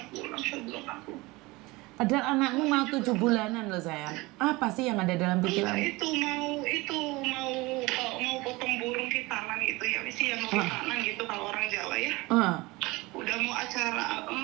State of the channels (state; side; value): quieter; left; 22.4 dB